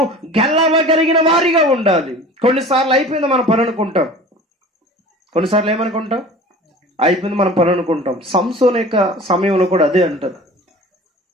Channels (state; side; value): normal; both; correlation 0.41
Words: గెలవగలిగిన వారిగా ఉండాలి. కొన్నిసార్లు అయిపోయింది మన పని అనుకుంటాం, కొన్నిసార్లు ఏమనుకుంటాం? అయిపోయింది మన పని అనుకుంటాం. సంసోను యొక్క సమయంలో కూడా అదే అంటారు.